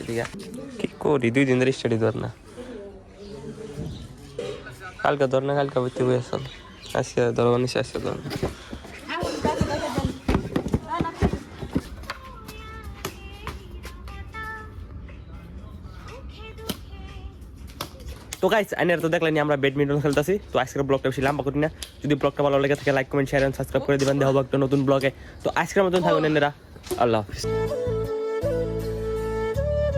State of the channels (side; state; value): both; identical; correlation 1.00